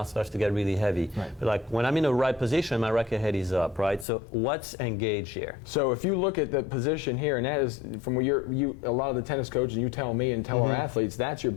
starts to get really heavy. But like when I'm in the right position, my racket head is up, right? So what's engaged here? So if you look at the position here, and that is from where a lot of the tennis coaches, you tell me and tell our athletes, that's your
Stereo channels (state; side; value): drops out; right; at 4.0 s